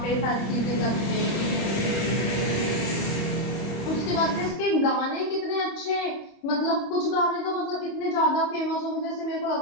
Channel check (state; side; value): late; right; 25 ms